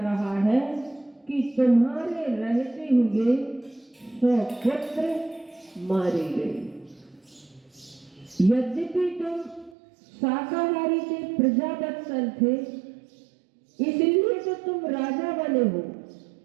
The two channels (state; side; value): drops out; left; at 9.8 s